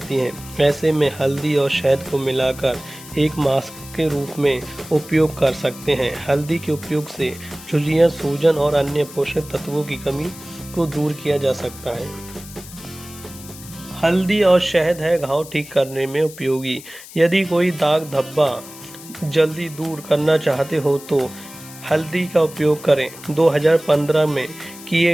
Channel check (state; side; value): noise; left; hiss, 17 dB below the sound